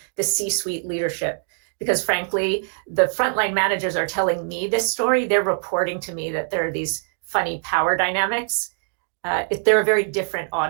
the C-suite leadership. Because frankly, the frontline managers are telling me this story. They're reporting to me that there are these funny power dynamics. They're a very different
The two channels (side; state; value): left; silent; digital silence